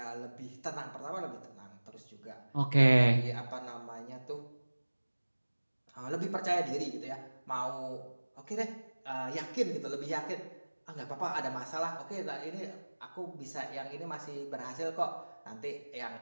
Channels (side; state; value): both; inverted; correlation -1.00